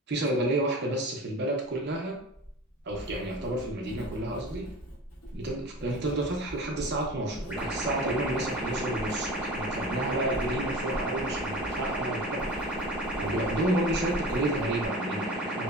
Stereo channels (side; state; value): both; normal; correlation 0.36